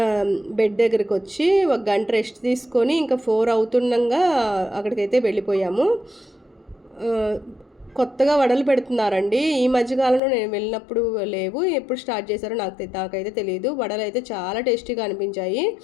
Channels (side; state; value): right; drops out; at 10.2 s